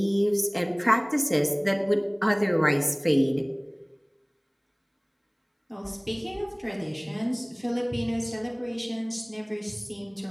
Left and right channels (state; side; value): identical; both; correlation 1.00